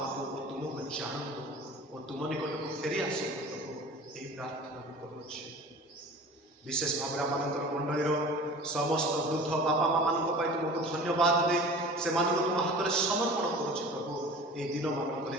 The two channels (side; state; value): both; normal; correlation 0.40